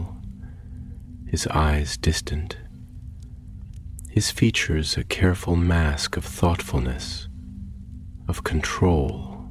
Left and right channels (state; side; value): identical; both; correlation 1.00